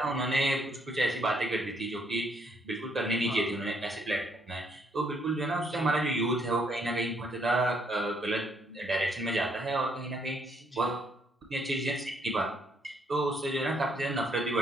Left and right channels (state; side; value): normal; both; correlation 0.70